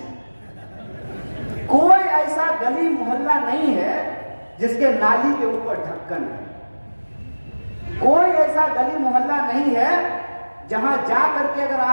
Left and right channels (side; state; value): both; inverted; correlation -1.00